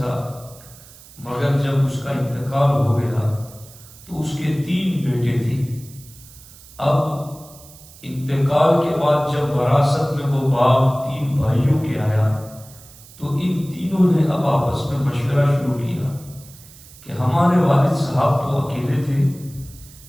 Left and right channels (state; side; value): noise; right; hiss, 21 dB below the sound